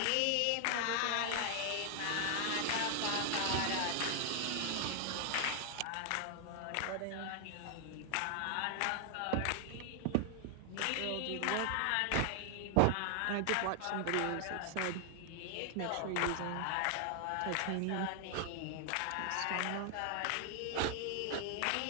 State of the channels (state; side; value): different; both; correlation 0.00